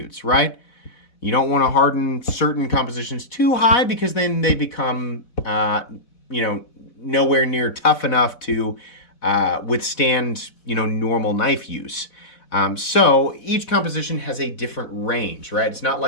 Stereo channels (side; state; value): right; late; 4.1 ms